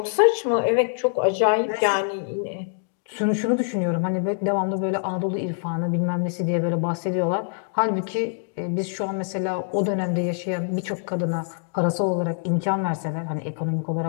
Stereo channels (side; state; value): right; silent; digital silence